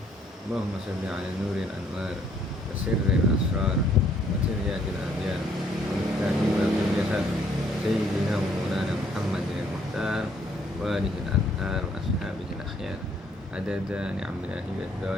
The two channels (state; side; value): normal; both; correlation 0.65